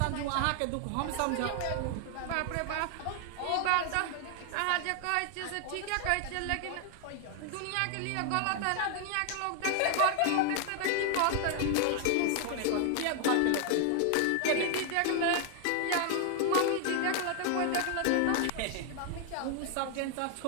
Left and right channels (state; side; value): different; both; correlation 0.00